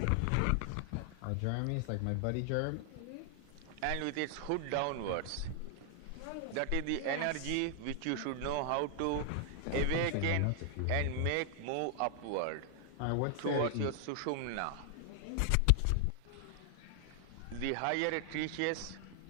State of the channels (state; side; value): different; both; correlation 0.00